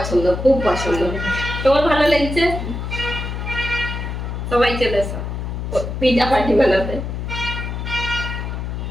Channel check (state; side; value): noise; left; hum, 5 dB below the sound